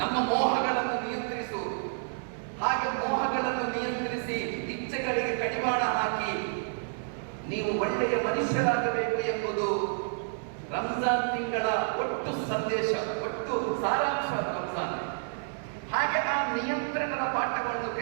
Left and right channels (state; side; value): silent; left; 58 dB below the other